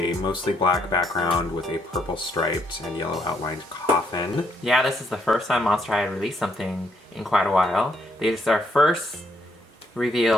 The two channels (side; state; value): both; normal; correlation 0.72